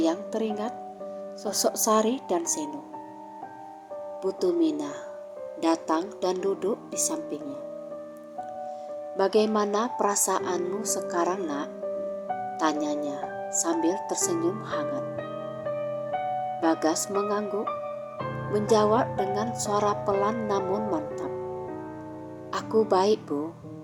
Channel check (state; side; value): identical; both; correlation 1.00